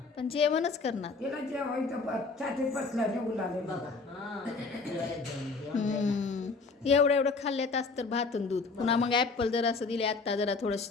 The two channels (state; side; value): quieter; right; 4.1 dB